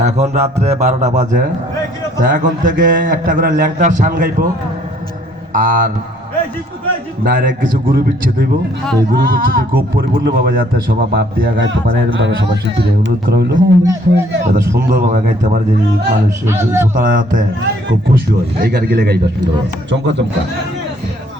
এখন রাত্রে 12টা বাজে। তা এখন থেকে একটা করে ল্যাংটার সান গাইব আর ডাইরেক্ট কিছু গুরু বিচ্ছেদ হইব। এই গুরু বিচ্ছেদে খুব পরিপূর্ণভাবে যাতে সবাই বাপ দিয়া গাইতে পারে এরকমভাবে সবার শিল্পীদের অনুরোধ করা হইলো, যাতে সুন্দরভাবে গাইতে পারে, যে মানুষ শ্রোতারা যাতে খুব খুশি হয় এই গান গেলে গাইবা সুন্দর চমকা চমকা।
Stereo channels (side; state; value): both; normal; correlation 0.62